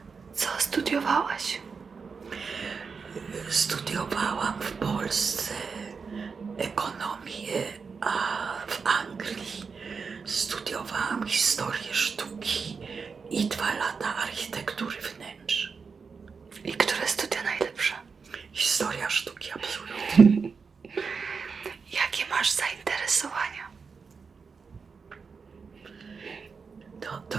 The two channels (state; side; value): quieter; left; 5.3 dB